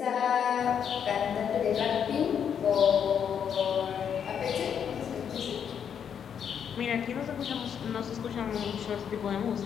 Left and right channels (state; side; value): quieter; right; 8.0 dB